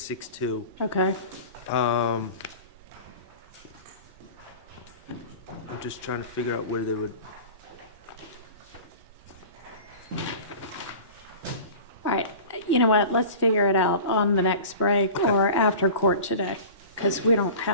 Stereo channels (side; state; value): both; inverted; correlation -0.37